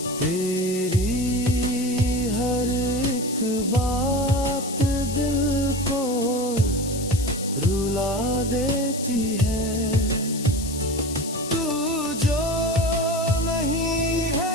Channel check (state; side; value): noise; left; hiss, 10 dB below the sound